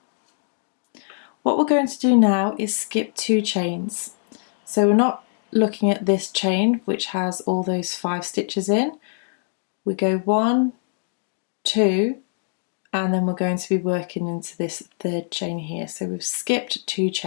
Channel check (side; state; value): right; silent; digital silence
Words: What we're going to do now is skip 2 chains. So we're not looking at this chain which has all those 5 stitches in. We go 1, 2, and then we're going to be working into this 3rd chain here. So we've skipped 2